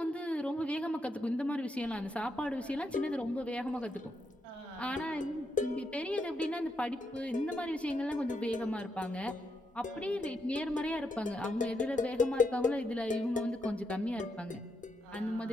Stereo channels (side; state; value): both; normal; correlation 0.80